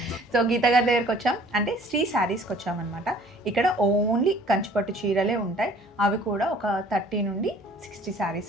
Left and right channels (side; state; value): both; normal; correlation 0.54